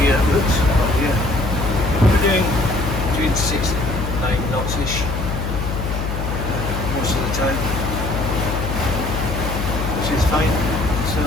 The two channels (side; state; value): left; noise; hum, 3 dB below the sound